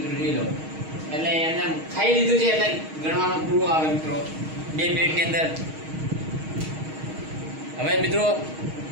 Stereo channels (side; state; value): left; late; 6.4 ms